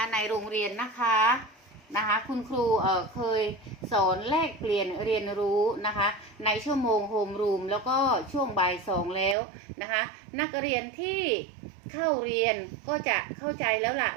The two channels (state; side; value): drops out; left; at 9.3 s